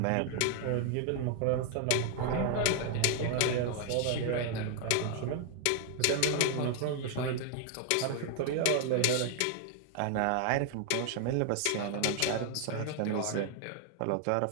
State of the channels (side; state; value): both; different; correlation 0.00